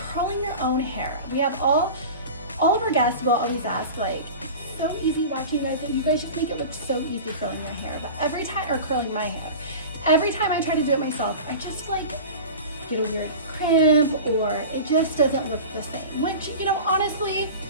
your own hair. We have all of our guests will always ask, like, it's so easy watching you guys, and you guys just make it look so easy curling your hair. But every time, or curling my hair, every time I try to do it myself, I just like get a weird crimp, or it just doesn't look the same. Which, you know, honestly,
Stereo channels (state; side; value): inverted; both; correlation -0.34